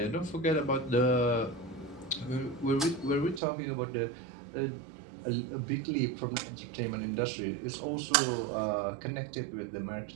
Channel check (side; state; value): left; drops out; at 3.4 s